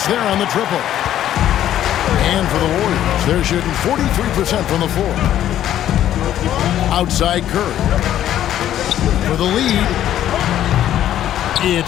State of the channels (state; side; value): quieter; right; 11.7 dB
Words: there on the triple. And for the Warriors, they're shooting 43% from the floor. Outside Curry. For the lead.